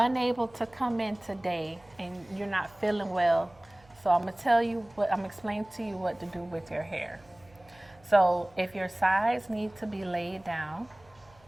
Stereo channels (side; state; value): right; noise; hum, 28 dB below the sound